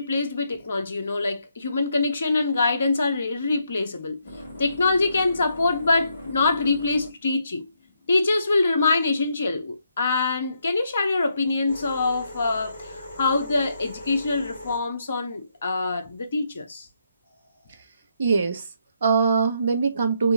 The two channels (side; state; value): both; inverted; correlation -0.77